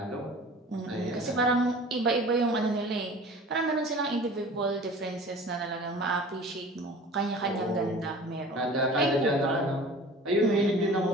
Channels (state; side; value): normal; both; correlation 0.42